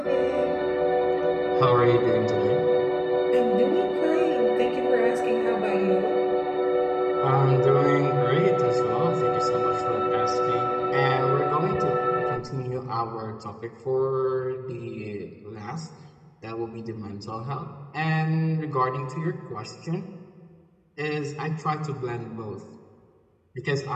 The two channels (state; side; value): identical; both; correlation 1.00